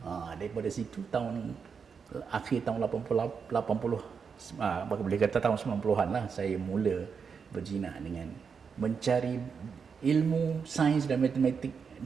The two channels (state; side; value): quieter; left; 6.0 dB